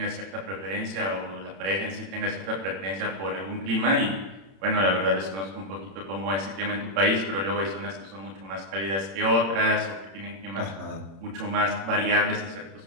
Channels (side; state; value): left; late; 31 ms